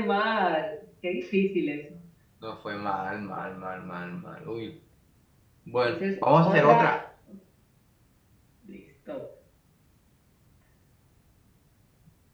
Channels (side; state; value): both; identical; correlation 1.00